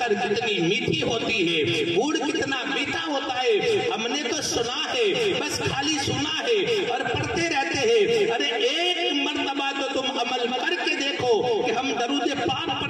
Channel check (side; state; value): both; identical; correlation 1.00